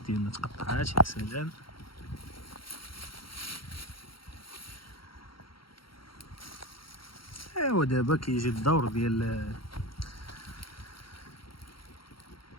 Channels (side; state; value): right; late; 0.73 ms